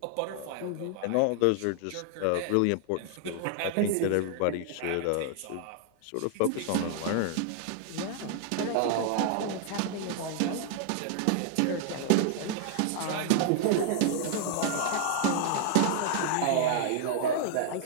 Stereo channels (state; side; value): different; both; correlation 0.00